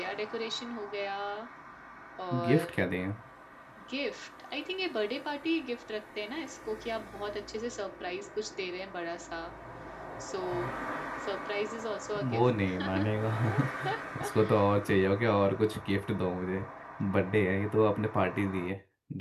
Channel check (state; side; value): identical; both; correlation 1.00